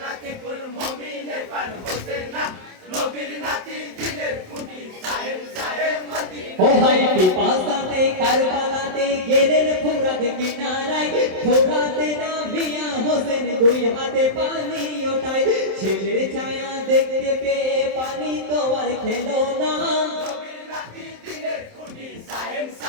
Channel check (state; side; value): late; left; 27 ms